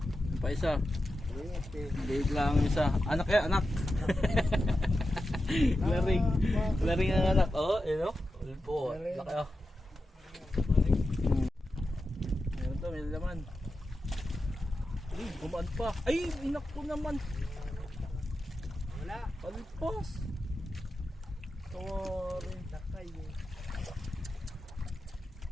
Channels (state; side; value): normal; both; correlation 0.90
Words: Pa isa. Liit lang ang isa. Anak. Laring ang anak. Oh, yun o. Ulpo. Laki o. Meron to, may laman. Ay, gumaan pa. Ay, inak ko naman. Wala. Palpas. Tawari. Lakay eh.